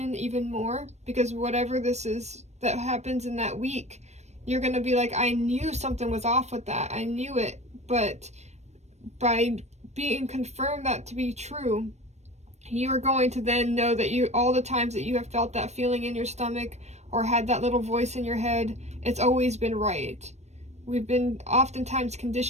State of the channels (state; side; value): late; left; 0.32 ms